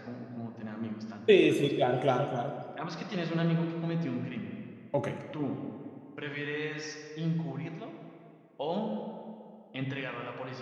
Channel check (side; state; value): both; identical; correlation 1.00